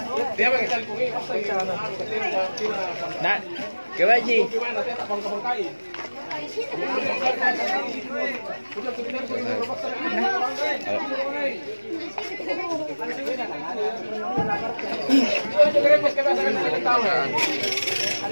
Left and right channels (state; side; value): inverted; both; correlation -1.00